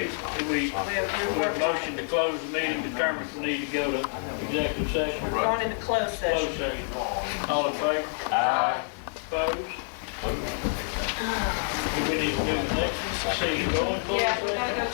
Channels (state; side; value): silent; right; 60 dB below the other